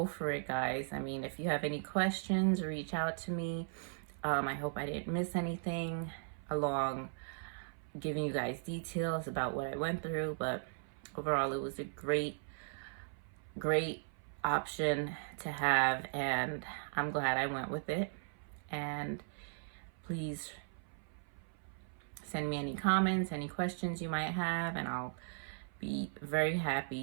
for it, guys. If you have any questions, reach out to me. I hope I didn't miss anything along giving you guys details about what I went through, but overall it was a great option to have, and I'm glad I went with it. And please send me any comments, any questions you might have, and I'll be very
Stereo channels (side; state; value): left; silent; 53 dB below the other